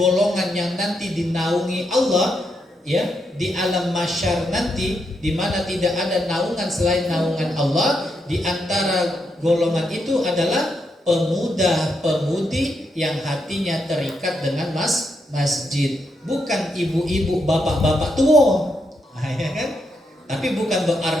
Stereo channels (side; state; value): both; normal; correlation 0.81